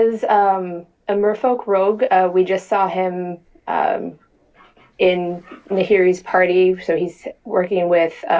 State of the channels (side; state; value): both; identical; correlation 1.00